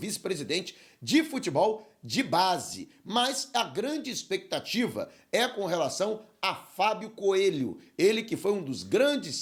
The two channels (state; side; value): identical; both; correlation 1.00